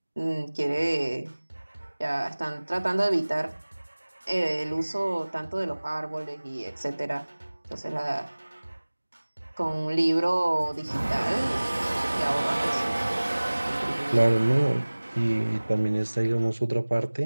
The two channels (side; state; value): both; inverted; correlation -1.00